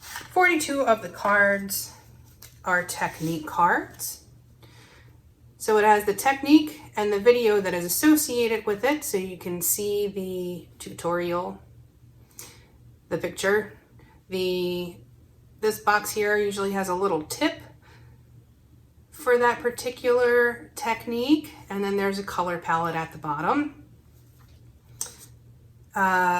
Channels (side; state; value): both; identical; correlation 1.00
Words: 42 of the cards are technique cards. So it has the technique and the video that is associated with it, so you can see the tutorial, the picture. This box here usually has a little tip for that particular technique, and then there's a color palette at the bottom.